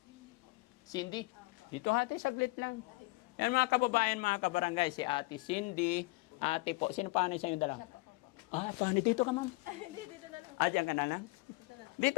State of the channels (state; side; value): quieter; right; 24.6 dB